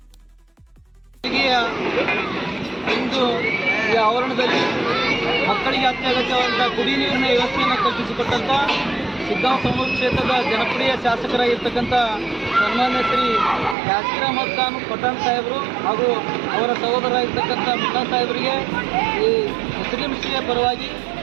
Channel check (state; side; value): drops out; left; at 13.8 s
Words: ಇಂದು ಈ ಆವರಣದಲ್ಲಿ ಮಕ್ಕಳಿಗೆ ಅತ್ಯಗತ್ಯವಾದಂತಹ ಕುಡಿಯ ನೀರಿನ ವ್ಯವಸ್ಥೆಯನ್ನು ಕಲ್ಪಿಸಿಕೊಟ್ಟಂತ ಶಿಗ್ಗಾಂವ್ ಸೌನೂರು ಕ್ಷೇತ್ರದ ಜನಪ್ರಿಯ ಶಾಸಕರಾಗಿರ್ತಕ್ಕಂಥ ಸನ್ಮಾನ್ಯ ಶ್ರೀ ಯಾಸಿರ್ ಅಹಮದ್ ಖಾನ್ ಪಠಾಣ್ ಸಾಹೇಬರು ಹಾಗೂ ಅವರ ಸಹೋದರರಾಗಿರ್ತಕ್ಕಂಥ ಮುಲ್ಲಾ ಸಾಹೇಬರಿಗೆ ಈ ಮುಸ್ಲಿಂ ಶ್ರೀಯ ಪರವಾಗಿ